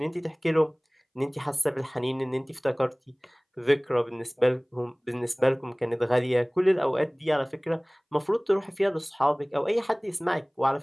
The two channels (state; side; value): identical; both; correlation 1.00